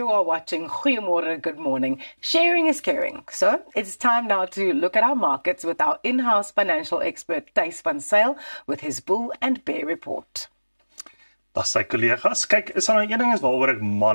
are watching Goeiemorgen, Good Morning. Sharing is caring. So it's time now to look at our markets with our in-house financial expert, Thys van Zyl, with his bull and bear report. Dag sy kollegas. Kyk, is daar 'n ding waaroor ek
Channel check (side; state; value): both; inverted; correlation -1.00